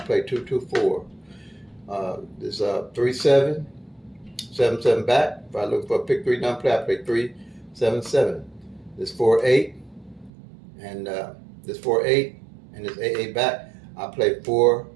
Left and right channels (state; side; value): drops out; left; at 10.3 s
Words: 2-2-4. There's 3-7, 7-7 back. If I look for a pick three number play, I play 3-7-7. This 4-8 and this 4-8 and this 8-8 back, I play